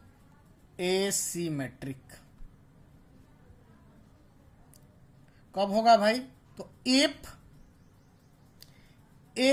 asymmetric. कब होगा भाई? तो if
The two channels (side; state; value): both; identical; correlation 1.00